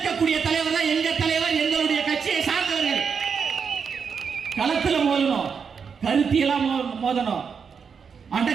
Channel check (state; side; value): quieter; left; 6.2 dB